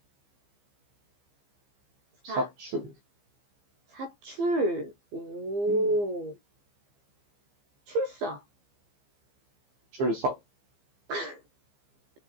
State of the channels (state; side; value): late; left; 15 ms